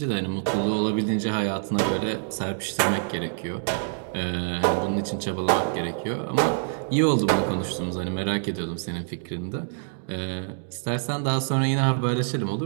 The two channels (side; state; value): left; silent; digital silence